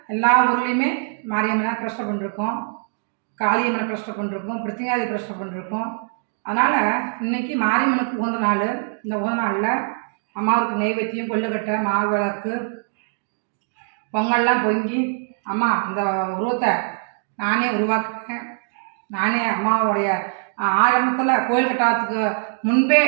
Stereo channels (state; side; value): silent; left; 64 dB below the other